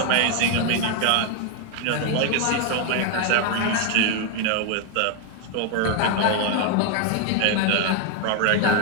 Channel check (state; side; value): different; both; correlation 0.00